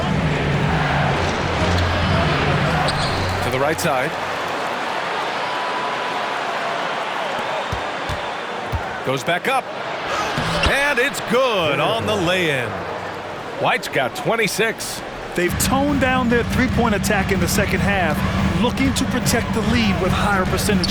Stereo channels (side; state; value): both; identical; correlation 1.00